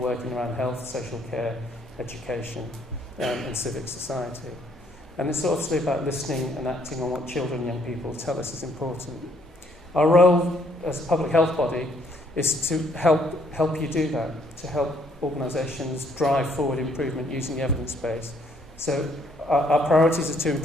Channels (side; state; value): both; normal; correlation 0.67